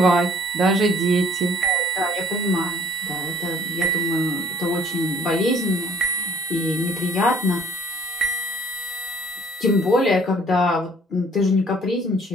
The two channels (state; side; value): normal; both; correlation 0.57